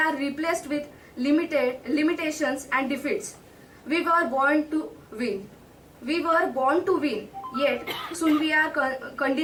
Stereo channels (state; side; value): identical; both; correlation 1.00